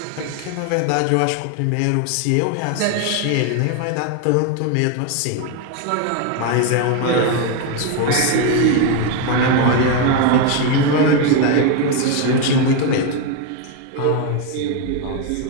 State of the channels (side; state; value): both; different; correlation 0.01